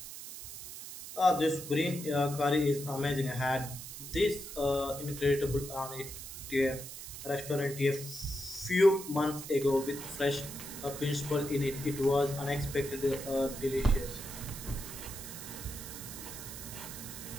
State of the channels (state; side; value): noise; right; hiss, 10 dB below the sound